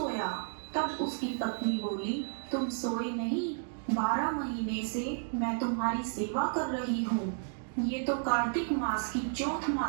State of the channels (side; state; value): left; silent; 56 dB below the other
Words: तब उसकी पत्नी बोली, तुम सोए नहीं, 12 महीने से मैं तुम्हारी सेवा कर रही हूँ। ये तो कार्तिक मास की चौथ